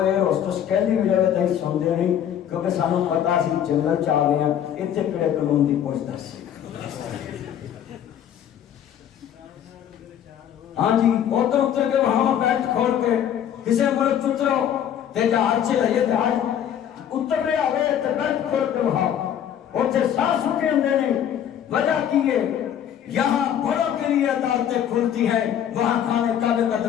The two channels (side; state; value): right; quieter; 9.8 dB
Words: ہوسٹس کہندی بھی جگہ تے سنتے نہیں کیونکہ سانوں پتا سی جنگل چ آ گئے ہیں اتنے کہڑے قانون دی پوچھ دس. ہاں جی ادھر اتر کے وہاں بیٹھ کھول کے کسی ملک اترو تے جہاز سے لئیے جہاز اتر رہے آگے تے بیٹھ کھول کے وہاں اتنے سانس سکے اندے نہیں. وجہ کی ہے یہاں بڑوں کے لیے عدالتیں کھلتی ہیں، وہاں خانے کعبے کا